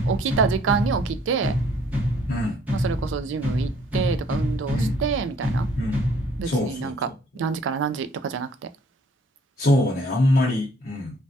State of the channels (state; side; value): normal; both; correlation 0.60